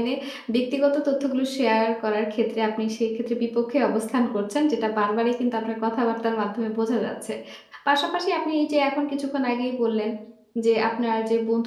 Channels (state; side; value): identical; both; correlation 1.00